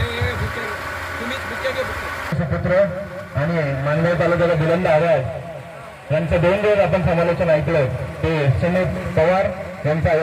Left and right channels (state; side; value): identical; both; correlation 1.00